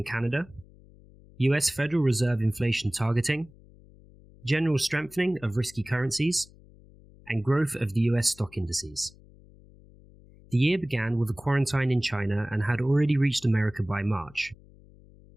Canada, US Federal Reserve inflation targeting, general strengthening of risky currencies, and growth of the US stock indices. The year began with a quarantine in China and had already reached America by March.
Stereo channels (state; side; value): noise; left; hum, 24 dB below the sound